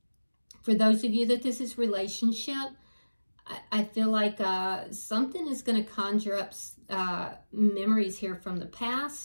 For those of you that this is relationship, I feel like something is going to conjure up memories here from the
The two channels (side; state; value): both; inverted; correlation -1.00